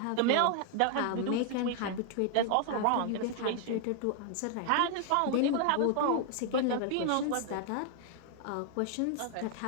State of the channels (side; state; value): both; different; correlation 0.00